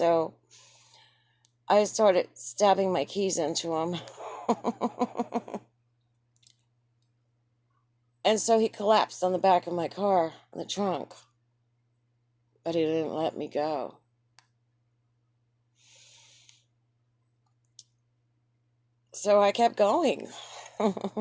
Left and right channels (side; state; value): both; identical; correlation 1.00